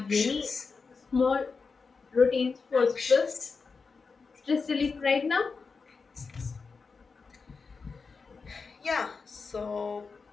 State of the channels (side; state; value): right; quieter; 4.7 dB